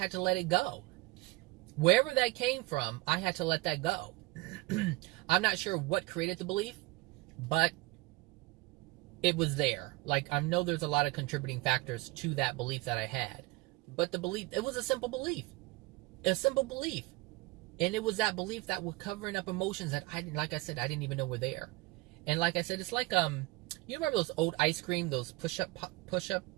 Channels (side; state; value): left; quieter; 22.0 dB